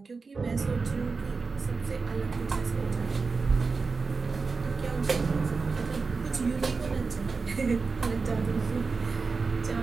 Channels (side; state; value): left; quieter; 4.4 dB